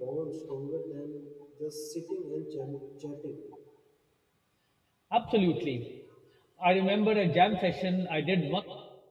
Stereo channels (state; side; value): identical; both; correlation 1.00